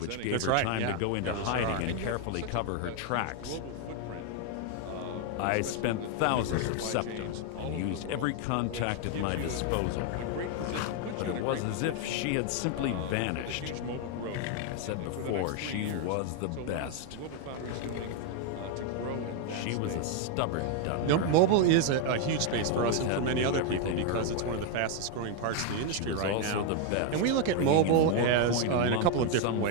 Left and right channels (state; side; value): different; both; correlation 0.01